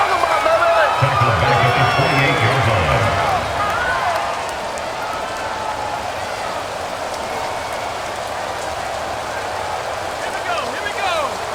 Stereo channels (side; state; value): both; identical; correlation 1.00